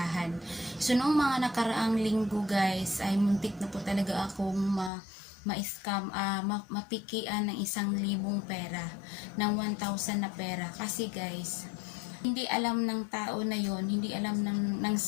So noong mga nakaraang linggo guys, ay muntik na po talaga akong ma-scam, mapikian ng 1,000 pera, ng 1,000 na pera. Kasi guys, hindi alam ng tao na yon, hindi alam ng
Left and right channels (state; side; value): drops out; right; at 4.9 s